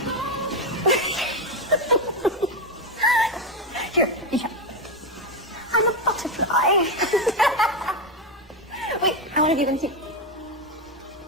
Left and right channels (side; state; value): both; normal; correlation 0.10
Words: Here. I'm a butterfly. Wait, I want to do them too.